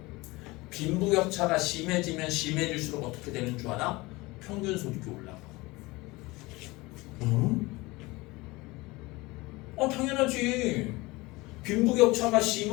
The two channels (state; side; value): quieter; right; 22.1 dB